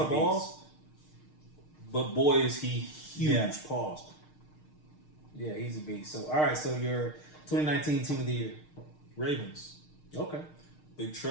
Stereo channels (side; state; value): right; late; 6.6 ms